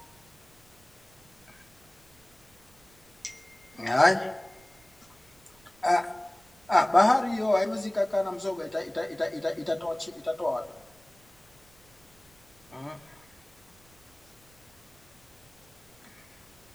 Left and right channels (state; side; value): noise; right; rumble, 28 dB below the sound